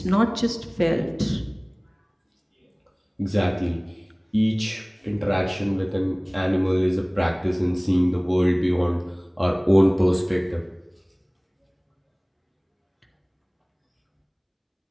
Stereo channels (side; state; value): both; identical; correlation 1.00